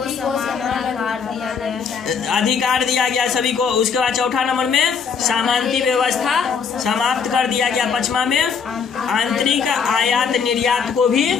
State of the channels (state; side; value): quieter; right; 6.1 dB